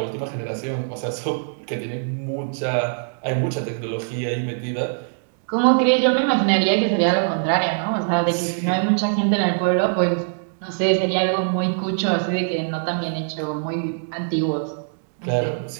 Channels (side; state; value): left; silent; digital silence